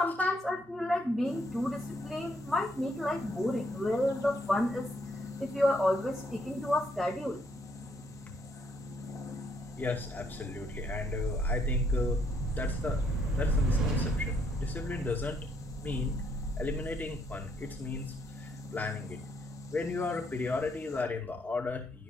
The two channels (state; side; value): normal; both; correlation 0.72